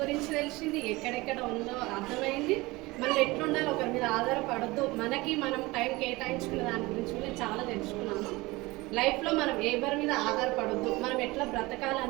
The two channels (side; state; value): left; quieter; 21.8 dB